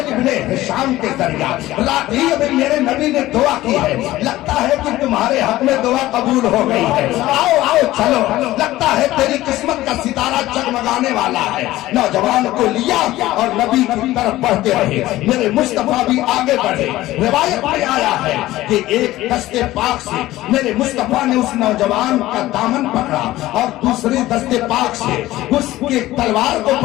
ابن ہشام کے ذریعہ۔ رات ہی ابھی میرے نبی نے دعا کی ہے، لگتا ہے کہ تمہارے حق میں دعا قبول ہو گئی ہے، آؤ آؤ چلو، لگتا ہے تیری قسمت کا ستارہ جگمگانے والا ہے۔ نوجوان کو لیا اور نبی کی طرف بڑھتے رہے، میرے مصطفیٰ بھی آگے بڑھے۔ روایت میں آیا ہے کہ ایک دستے پاک سے میرے مصطفیٰ نے اس نوجوان کا دامن پکڑا اور دوسری دستے پاک سے اس کے تلوار کو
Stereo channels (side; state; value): right; quieter; 16.3 dB